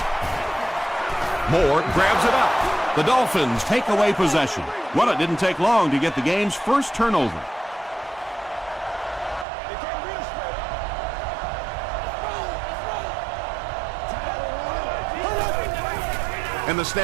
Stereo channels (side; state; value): left; drops out; at 9.5 s